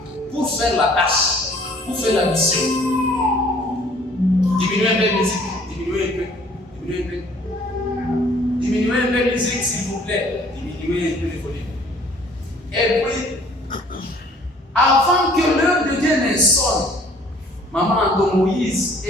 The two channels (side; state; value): both; normal; correlation 0.56